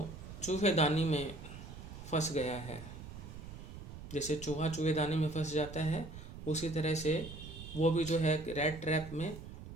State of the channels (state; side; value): noise; right; rumble, 12 dB below the sound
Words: चूहेदानी में फंस गया है? जैसे चूहा चूहेदानी में फंस जाता है, उसी तरह से वो भी जो है रैट ट्रैप में,